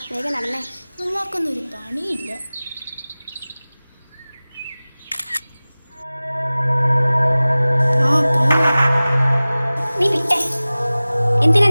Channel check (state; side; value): inverted; both; correlation -0.98